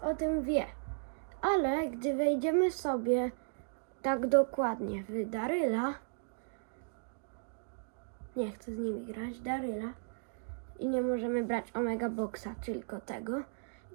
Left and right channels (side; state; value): left; silent; digital silence